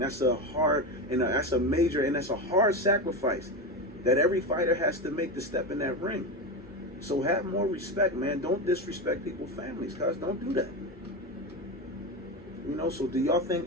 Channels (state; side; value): normal; both; correlation 0.18